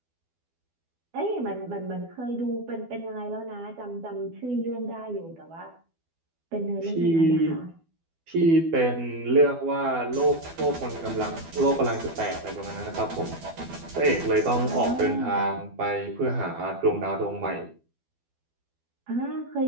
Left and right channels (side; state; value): left; late; 12 ms